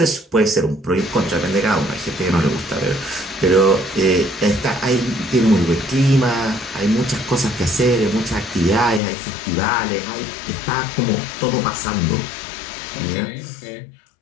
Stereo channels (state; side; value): drops out; right; at 9.0 s